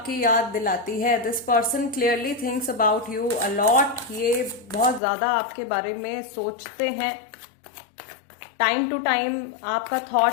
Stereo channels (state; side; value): drops out; right; at 5.0 s